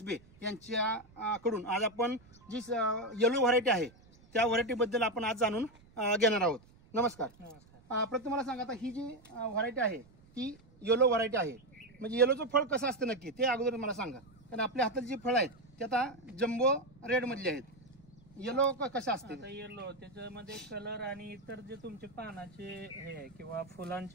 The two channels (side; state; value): right; noise; rumble, 26 dB below the sound